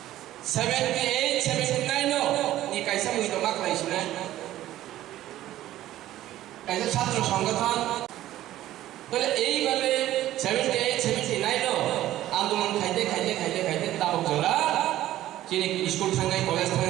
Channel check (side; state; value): left; quieter; 14.0 dB